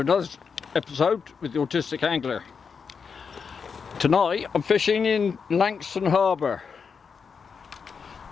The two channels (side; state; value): right; quieter; 5.9 dB